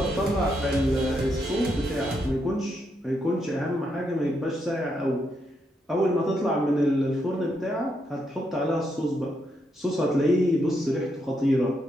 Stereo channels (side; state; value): both; normal; correlation 0.79